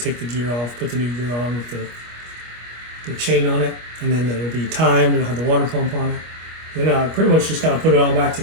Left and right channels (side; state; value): left; late; 25 ms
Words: the gear off, put the new gear on with the chain on it, and then it'll be timed, it'll have the water pump on it. Then I pretty much just kind of put it all back